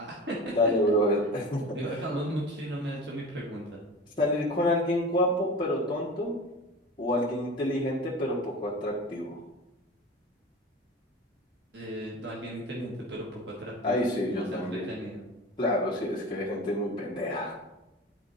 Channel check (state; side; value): normal; both; correlation 0.34